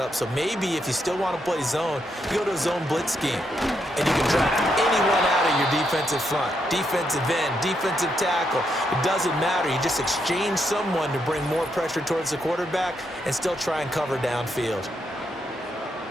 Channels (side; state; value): both; normal; correlation 0.79